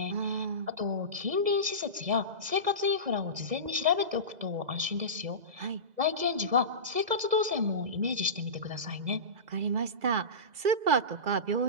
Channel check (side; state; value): left; late; 2.0 ms